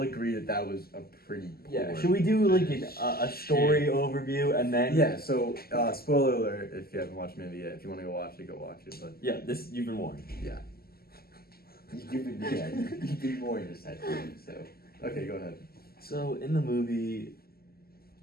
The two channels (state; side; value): late; right; 0.45 ms